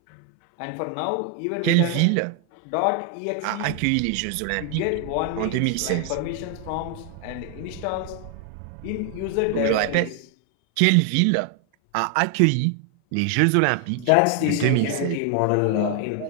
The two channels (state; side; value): different; both; correlation 0.00